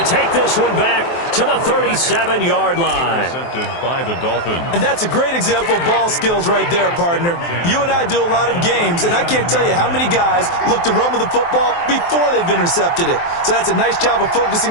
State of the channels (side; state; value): right; late; 23 ms